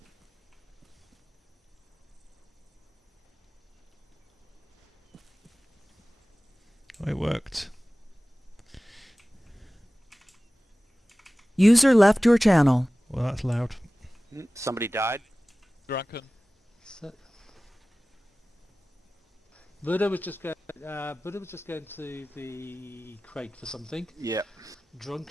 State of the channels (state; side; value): normal; both; correlation 0.97